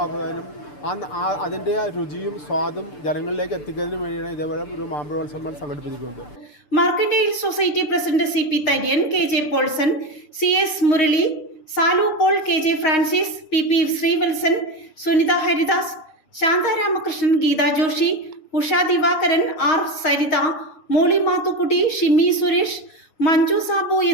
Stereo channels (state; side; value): late; right; 6.3 ms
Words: അതിൻ്റെ രുചിയും സ്വാദും ജനങ്ങളിലേക്ക് എത്തിക്കുന്നതിനും വേണ്ടിയാണ് ഇതേപോലെ ഒരു മാമ്പഴോത്സവം സംഘടിപ്പിച്ചിരിക്കുന്നത്. Mercantile society president CP Tharyan, KJ Polson, CS Murali, Salu Paul, KJ Francis, PP Sreevalsan, Sunitha Haridas, Shantha Ramakrishnan, Geetha Joshi, Usha Divakaran, R Saritha, Molly Mathukutty, Shimmy Suresh, Manju Sabu